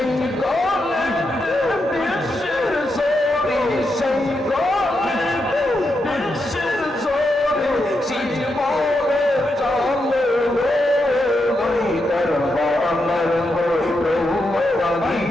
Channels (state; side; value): normal; both; correlation 0.84